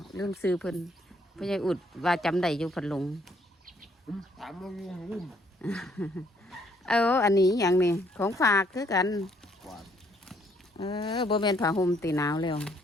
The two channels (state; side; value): normal; both; correlation 0.67